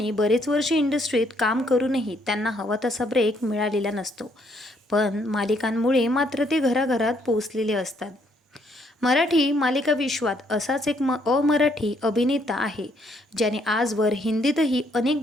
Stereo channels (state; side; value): normal; both; correlation 0.69